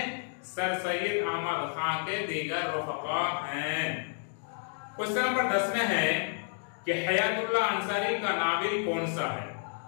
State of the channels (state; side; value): silent; right; digital silence